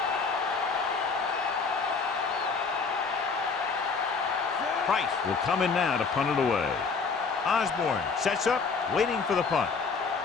Price will come in now to punt it away. Osborne sets up, waiting for the punt.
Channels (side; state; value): right; quieter; 4.9 dB